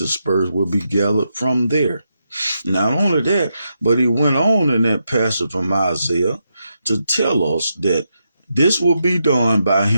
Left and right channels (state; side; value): inverted; both; correlation -0.83